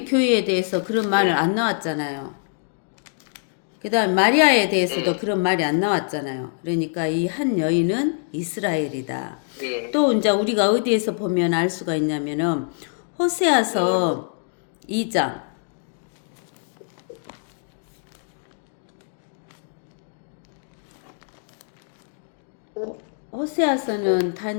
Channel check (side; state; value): right; silent; digital silence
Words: 교회에 대해서 그런 말은 안 나왔잖아요. 그 다음 마리아에 대해서도 그런 말이 안 나왔잖아요. 그러니까 이 한 여인은 이스라엘이다. 예. 또 이제 우리가 어디에서 보면 알 수가 있냐면은 호세아서 2장 호세아서는